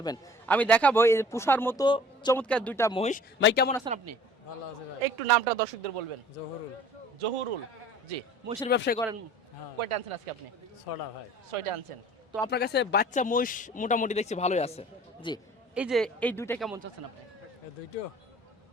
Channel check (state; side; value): normal; both; correlation 0.48